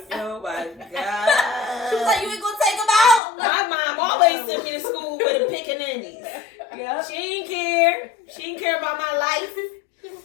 Oh, my She was God. like, "You ain't gonna take them out." My mom always sent me to school with the pickaninnies. Yeah. She didn't care. She didn't care about my life. She was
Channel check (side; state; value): right; drops out; at 3.2 s